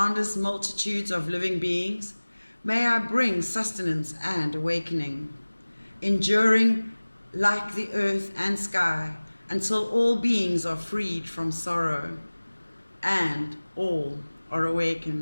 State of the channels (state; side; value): inverted; both; correlation -1.00